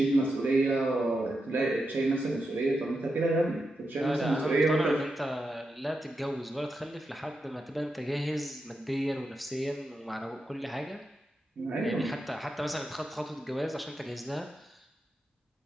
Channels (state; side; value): normal; both; correlation 0.87